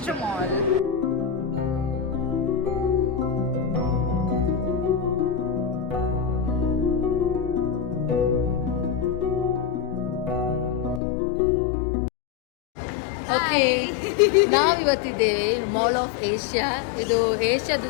mall. Okay, ನಾವಿವತ್ತಿದ್ದೇವೆ mall of Asia. ಇದು ಏಷ್ಯಾದ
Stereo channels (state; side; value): drops out; right; at 11.0 s